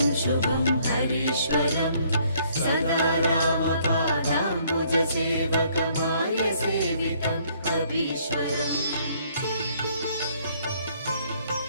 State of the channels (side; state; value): both; inverted; correlation -0.64